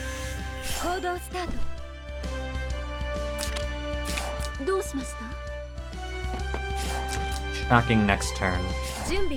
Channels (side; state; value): both; identical; correlation 1.00